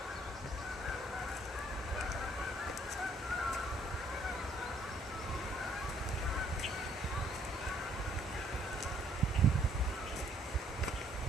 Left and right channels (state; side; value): normal; both; correlation 0.65